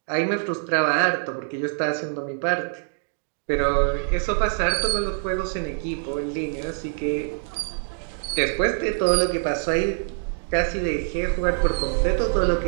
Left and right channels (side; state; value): left; silent; digital silence